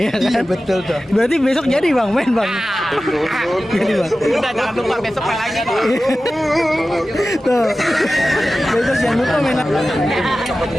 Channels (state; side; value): normal; both; correlation 0.95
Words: kan? Betul tuh. Berarti besok jadi bang main bang. Jadi bang. Udah jangan lupa besok main lagi. Tuh. Besok jangan lupa main lagi.